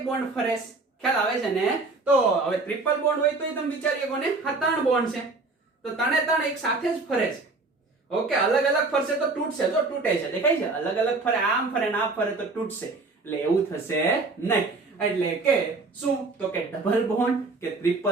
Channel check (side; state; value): left; quieter; 3.6 dB